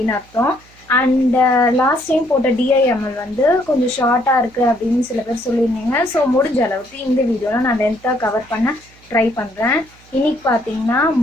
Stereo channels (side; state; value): right; noise; hum, 28 dB below the sound